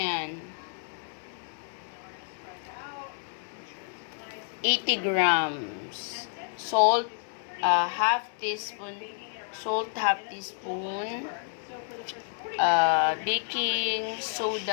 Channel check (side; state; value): right; silent; digital silence